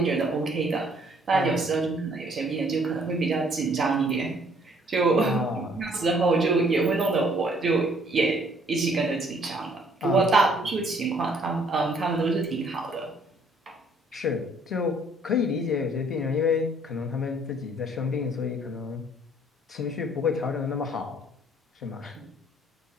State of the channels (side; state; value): both; normal; correlation 0.62